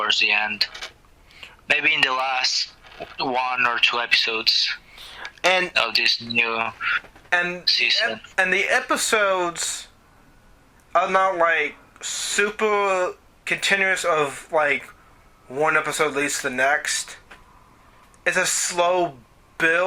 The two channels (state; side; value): identical; both; correlation 1.00